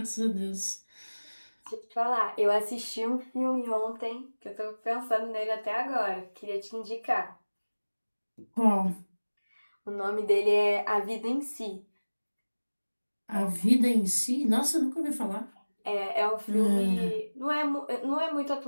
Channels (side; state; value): both; inverted; correlation -1.00